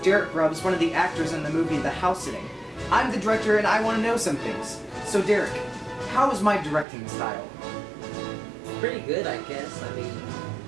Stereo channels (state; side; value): drops out; left; at 6.9 s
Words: Derek Grubbs, one of the actors in the movie The House Sitting. I'm the director and I want to know some things. So Derek, how is my directing style? Pretty good, I guess. I mean,